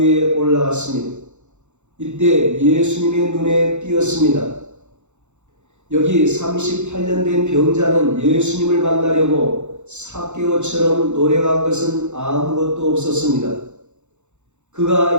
올라갔습니다. 이때 예수님의 눈에 띄었습니다. 여기 38년 된 병자는 예수님을 만나려고 삭개오처럼 노력한 것은 아무것도 없었습니다.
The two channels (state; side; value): late; left; 0.83 ms